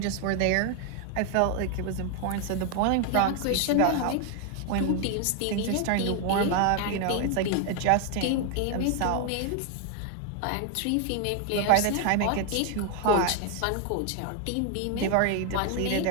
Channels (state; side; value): different; both; correlation 0.00